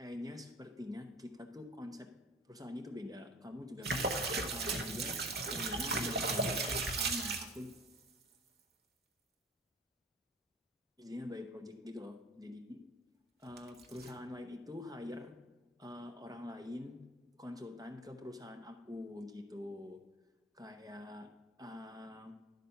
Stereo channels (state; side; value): normal; both; correlation 0.41